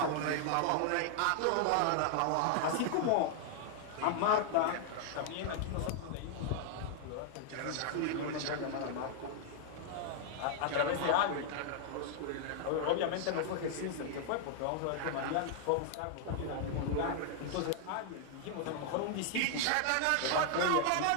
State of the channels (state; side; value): different; both; correlation 0.00